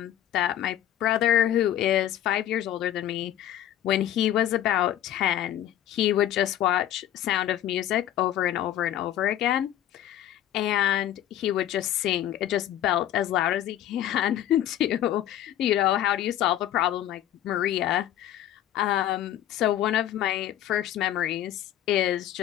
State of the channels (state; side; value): quieter; right; 12.0 dB